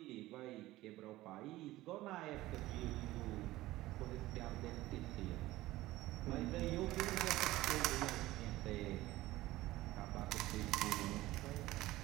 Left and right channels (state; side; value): quieter; left; 17.1 dB